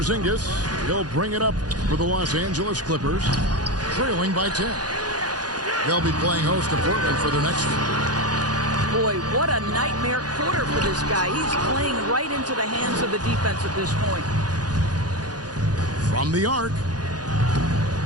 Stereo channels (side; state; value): left; late; 0.69 ms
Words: He'll bring it up for the Los Angeles Clippers, trailing by 10. They'll be playing host to Portland for their next one. Boy, what a nightmare quarter for this guy. He's playing right into the hands of the defense at this point. From the arc.